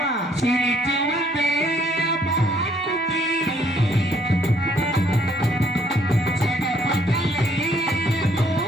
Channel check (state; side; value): normal; both; correlation 0.65